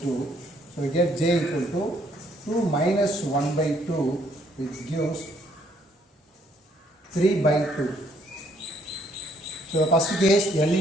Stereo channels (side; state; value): both; normal; correlation 0.67